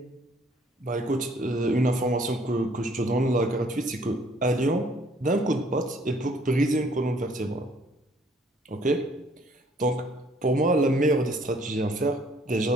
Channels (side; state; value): both; normal; correlation 0.61